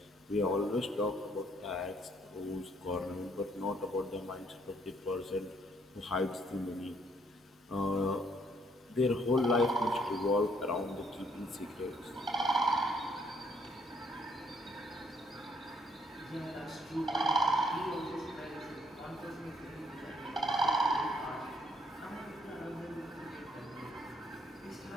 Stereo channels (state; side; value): normal; both; correlation 0.67